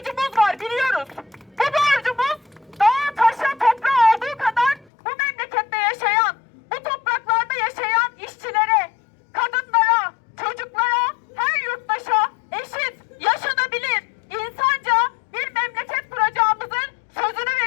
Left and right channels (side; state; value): right; drops out; at 4.9 s